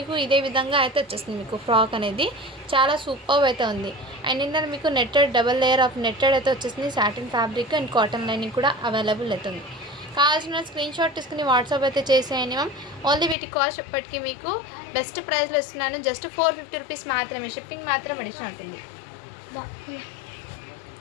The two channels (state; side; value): drops out; right; at 13.4 s